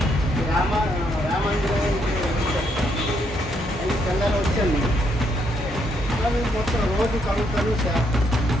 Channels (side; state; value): both; normal; correlation 0.74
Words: రామాంజనేయ అది తెల్లారి వచ్చాను. మేము మొత్తం రోజు కలుగుతాను సార్.